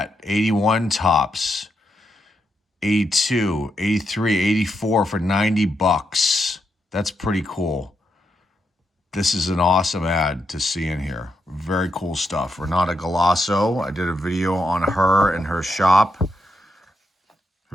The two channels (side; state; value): both; normal; correlation 0.82